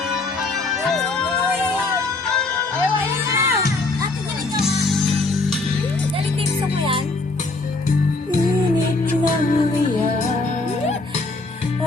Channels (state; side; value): quieter; right; 3.3 dB